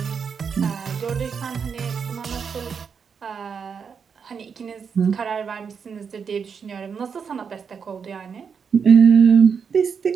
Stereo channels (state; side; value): quieter; left; 6.4 dB